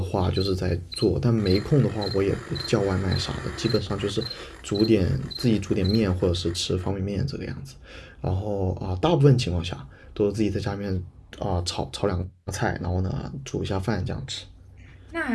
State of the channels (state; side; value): identical; both; correlation 1.00